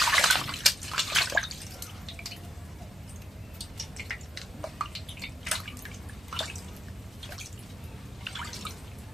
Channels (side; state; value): both; normal; correlation 0.81